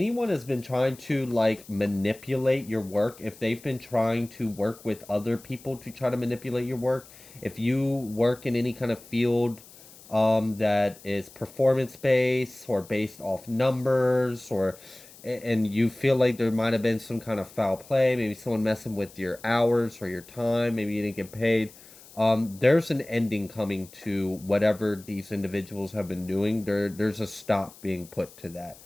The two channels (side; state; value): left; noise; hiss, 21 dB below the sound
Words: has been trying to like manipulate your work, if they've been trying to work with other people to try to manipulate your work, if you work in any kind of field that is performance based or based off numbers, or and you feel like there might have been some kind of foul play, maybe someone messing with your hours or your time, maybe you didn't get paid. There's an ending coming to whatever these individuals have been doing. There's a stop being put to that.